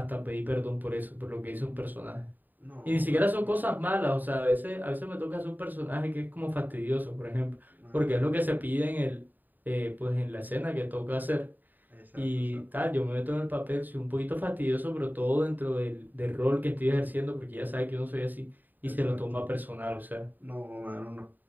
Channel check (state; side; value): late; left; 0.088 ms